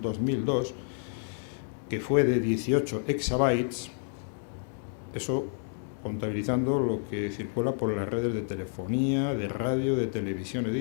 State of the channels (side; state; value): right; silent; digital silence